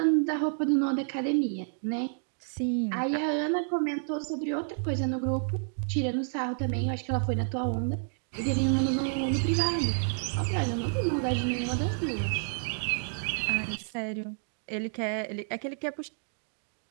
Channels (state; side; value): silent; left; digital silence